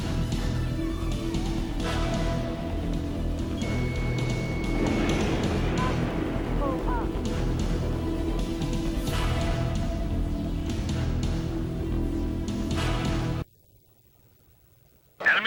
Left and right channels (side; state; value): both; identical; correlation 1.00